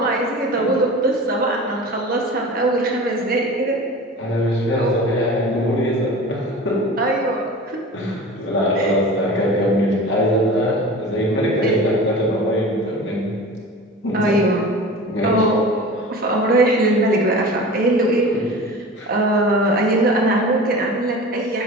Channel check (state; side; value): normal; both; correlation 0.36